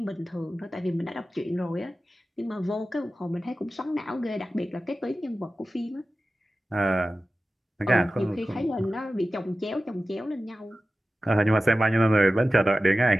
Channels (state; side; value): normal; both; correlation 0.95